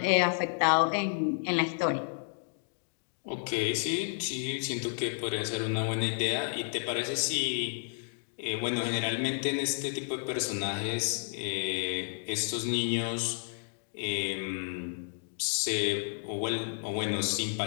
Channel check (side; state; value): right; silent; digital silence